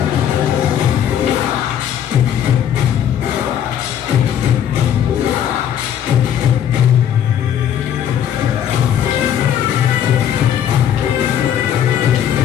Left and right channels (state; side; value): quieter; right; 9.6 dB